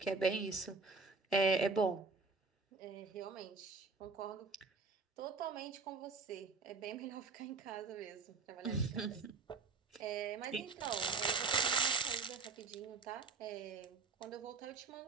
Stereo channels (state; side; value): quieter; left; 4.4 dB